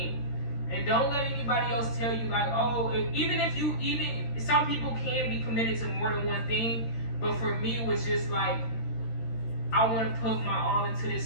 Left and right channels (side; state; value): right; late; 13 ms